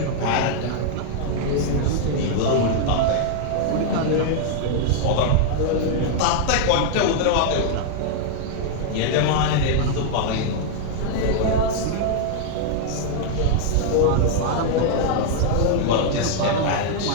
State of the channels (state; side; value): different; both; correlation -0.01